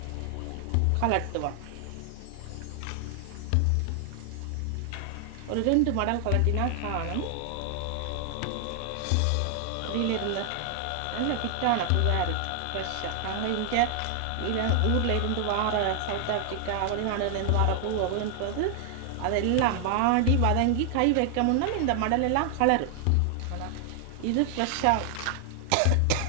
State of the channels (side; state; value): both; different; correlation 0.00